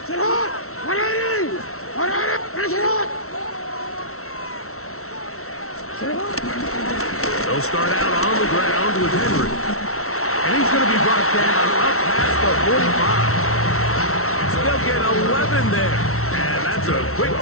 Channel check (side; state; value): right; late; 0.63 ms